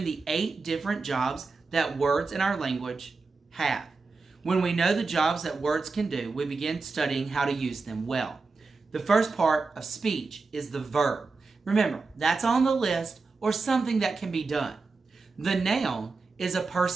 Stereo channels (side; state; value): left; quieter; 4.1 dB